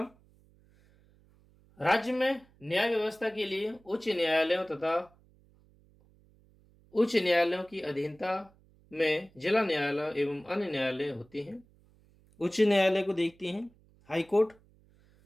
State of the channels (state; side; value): noise; right; hum, 30 dB below the sound